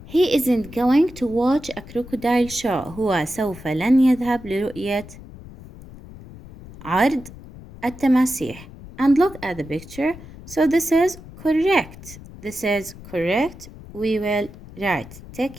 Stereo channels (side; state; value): left; noise; rumble, 17 dB below the sound